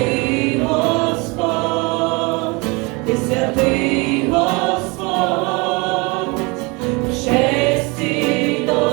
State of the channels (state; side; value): quieter; left; 27.7 dB